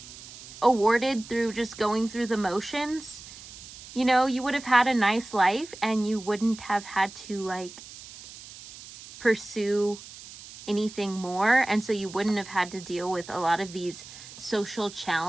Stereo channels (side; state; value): right; noise; hiss, 16 dB below the sound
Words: awarded through just going through the motions, you know, you would have had a nice life and you wouldn't have had to like pursue anything more. And so you wouldn't have had to deal with a lot of these social